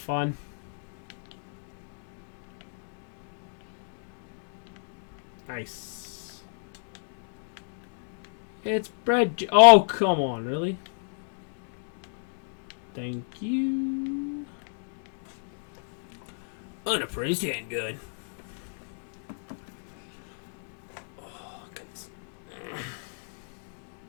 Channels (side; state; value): right; silent; digital silence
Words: Nice. It's bread. Oh, come on, really? Thank you. Unappraised handgun. Oh, goodness.